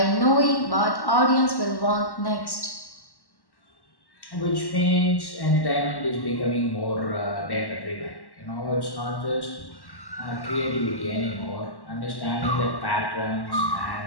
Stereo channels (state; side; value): late; right; 1.1 ms